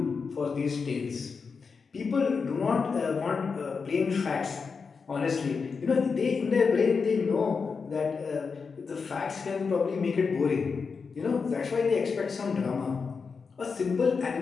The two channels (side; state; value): right; quieter; 5.2 dB